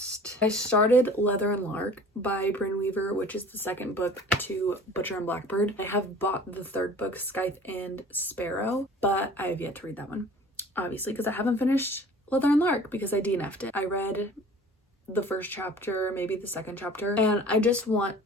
I started Leather and Lark by Brynne Weaver, which is the second book to Butcher and Blackbird. I have bought the third book, Scythe and Sparrow, but I have yet to read that one, obviously, because I haven't finished Leather and Lark because I DNF'd it. I read the first chapter, maybe the second chapter, and I just want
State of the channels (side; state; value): both; normal; correlation 0.46